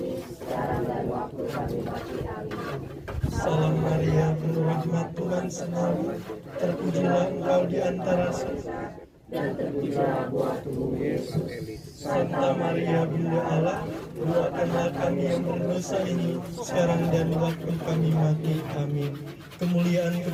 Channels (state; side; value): identical; both; correlation 1.00